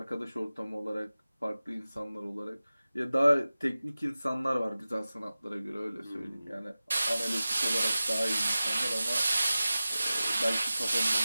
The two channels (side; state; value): both; inverted; correlation -0.96